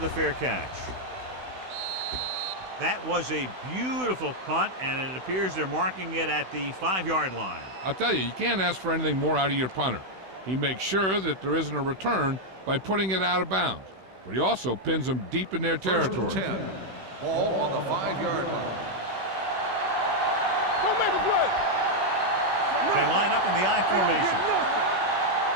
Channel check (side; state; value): left; late; 16 ms